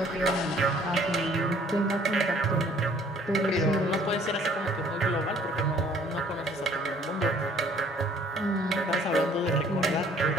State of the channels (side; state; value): both; normal; correlation 0.58